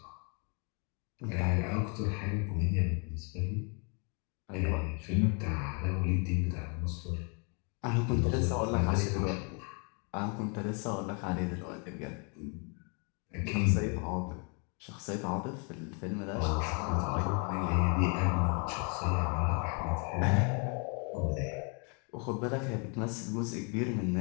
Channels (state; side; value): quieter; right; 36.1 dB